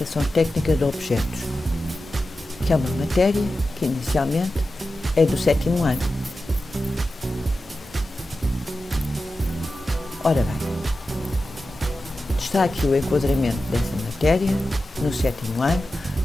técnica de objetos, que é uma matéria que inicialmente é do sétimo ano. Ora bem, está aqui o enquadramento dessa matéria no sétimo ano,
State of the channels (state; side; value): normal; both; correlation 0.93